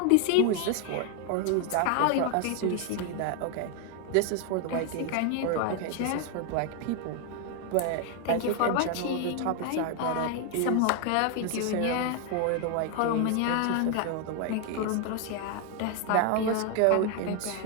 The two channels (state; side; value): different; both; correlation 0.01